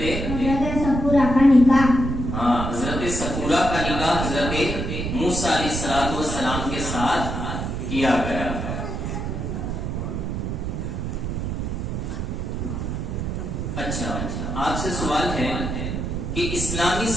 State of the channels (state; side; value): noise; right; rumble, 3 dB below the sound